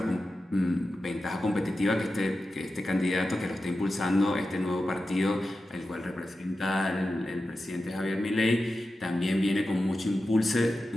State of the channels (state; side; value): normal; both; correlation 0.92